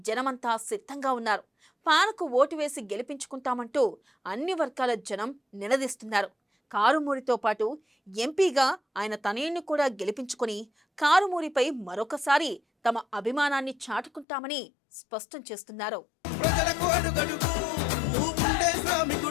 జనమంతా సిద్ధంగా ఉన్నారు. ఫ్యాన్కు ఓటు వేసి గెలిపించుకుంటామంటూ అన్ని వర్గాల జనం నినదిస్తున్నారు. కారుమూరితో పాటు ఎంపీగా ఆయన తనయుణ్ణి కూడా గెలిపించుకుని కారుమూరిపై మరొకసారి తమ అభిమానాన్ని చాటుకుంటామని స్పష్టం చేస్తున్నారు. ప్రజలకు అడుగడుగు నువ్వుండే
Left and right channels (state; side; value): drops out; right; at 14.2 s